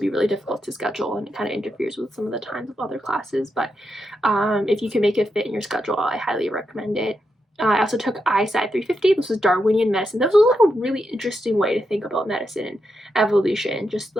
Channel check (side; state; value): both; normal; correlation 0.84